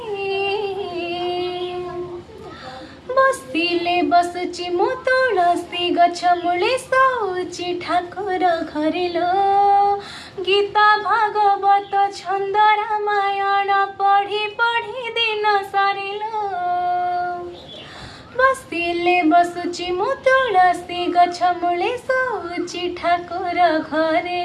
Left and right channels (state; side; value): identical; both; correlation 1.00